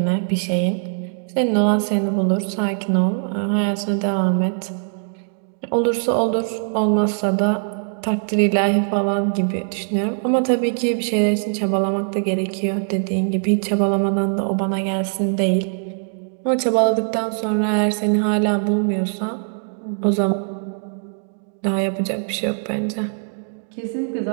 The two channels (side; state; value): left; silent; 63 dB below the other